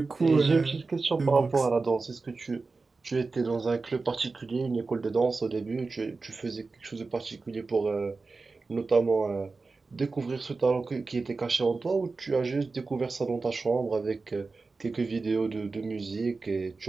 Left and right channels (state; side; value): quieter; left; 4.0 dB